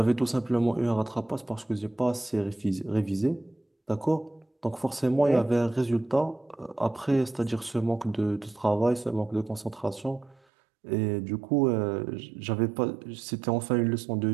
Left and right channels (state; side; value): drops out; left; at 10.4 s